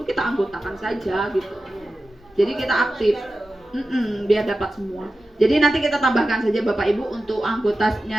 kita anggotakan saja gitu. Jadi kita aktif. Biar dapat semua. Jadi nanti kita tambahkan saja Bapak Ibu untuk anggotanya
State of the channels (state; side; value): normal; both; correlation 0.93